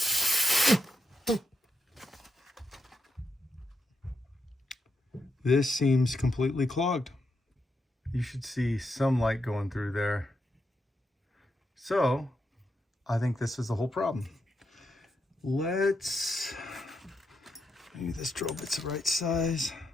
This seems completely clogged. You should see some light going through there. So I think this is the whole problem. Let's, maybe this drill bit's the right size.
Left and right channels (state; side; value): normal; both; correlation 0.83